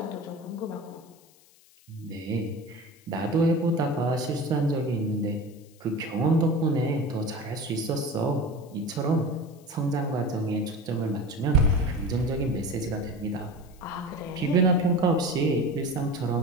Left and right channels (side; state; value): left; noise; hiss, 28 dB below the sound